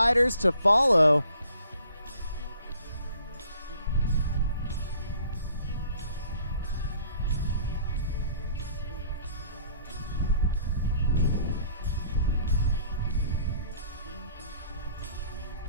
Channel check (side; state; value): both; inverted; correlation -0.57